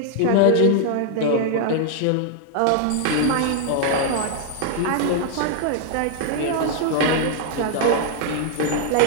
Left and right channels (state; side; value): different; both; correlation 0.00